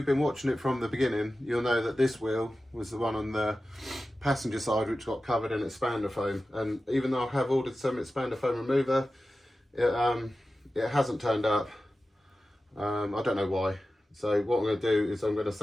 been watching it from the beginning, you'll know that this wheel was the one on the passenger side which got covered in expander foam, and even though I have ordered some expander foam remover, it hasn't turned up. I don't know why. So what I'm going to do is I'm going to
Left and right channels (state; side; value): normal; both; correlation 0.94